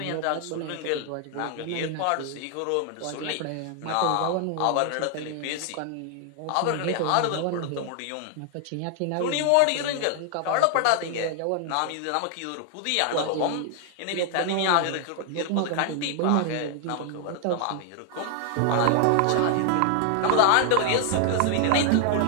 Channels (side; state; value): both; different; correlation 0.00